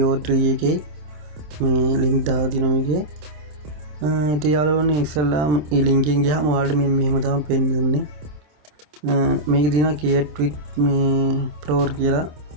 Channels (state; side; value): late; left; 27 ms